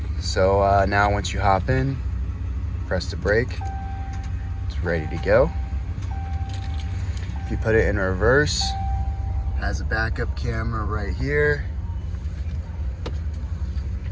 So now once you hop in, press the brake, it's ready to go. If you put it in reverse, has a backup camera right here.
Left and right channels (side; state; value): both; identical; correlation 1.00